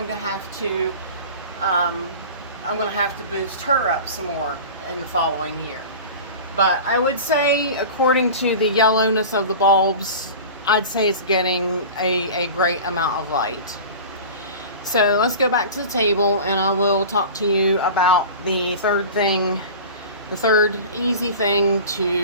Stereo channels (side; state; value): both; inverted; correlation -0.35